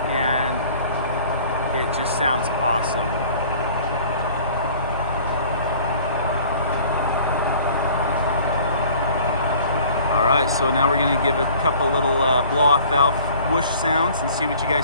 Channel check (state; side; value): inverted; both; correlation -0.50